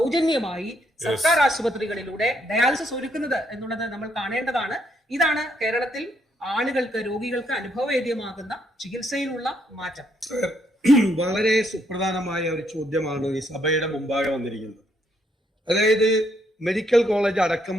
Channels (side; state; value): both; normal; correlation 0.73